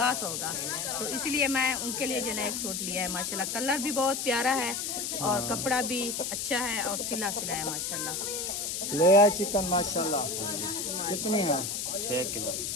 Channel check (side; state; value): left; noise; hiss, 3 dB below the sound